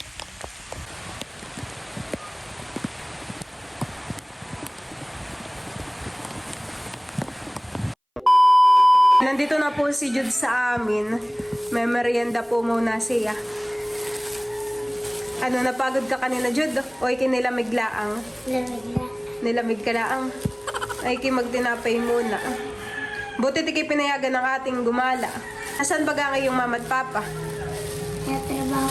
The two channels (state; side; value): identical; both; correlation 1.00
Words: Nandito na po si Jude sa amin. May merienda po muna siya. Ano, napagod ka kanina, Jude? O ikinilamig laang? Lamig na. Nilamig ka laang? Ay magtinapay muna. Buti tiki pinayagan ng ating gumala. Asan ba nga yung mama at papa? Natrabaho